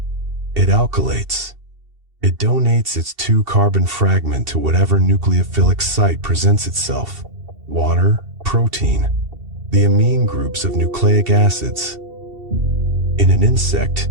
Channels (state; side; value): late; left; 2.7 ms